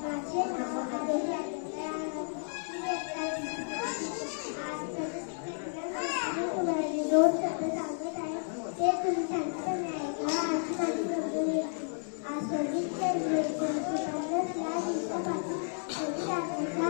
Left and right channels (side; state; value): right; silent; 56 dB below the other